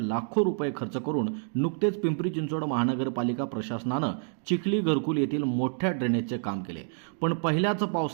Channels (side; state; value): left; silent; 59 dB below the other